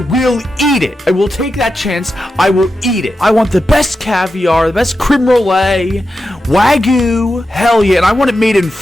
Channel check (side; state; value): both; normal; correlation 0.89